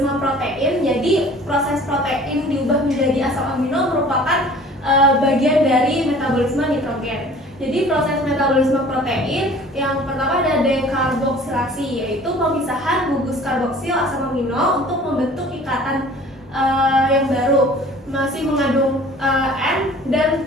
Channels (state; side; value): normal; both; correlation 0.48